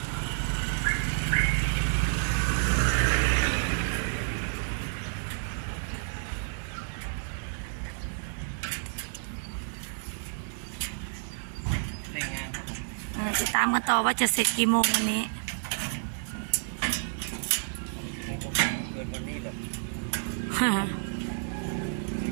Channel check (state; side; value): silent; left; digital silence